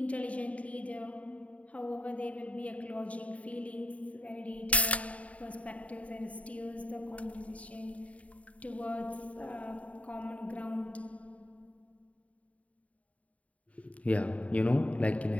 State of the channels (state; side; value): late; right; 0.067 ms